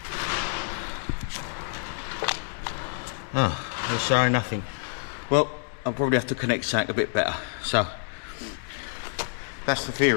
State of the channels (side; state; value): right; silent; digital silence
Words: Oh, they're showing nothing. Well, I'll probably have to connect something a bit better. So that's the